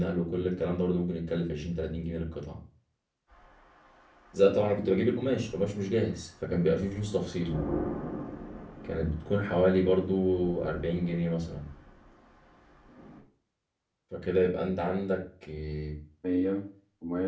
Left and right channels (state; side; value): identical; both; correlation 1.00